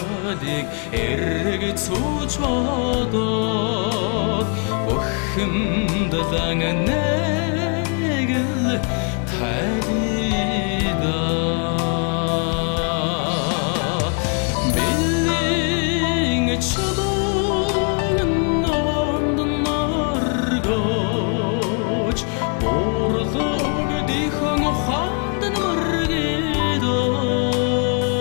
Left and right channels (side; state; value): right; quieter; 38.8 dB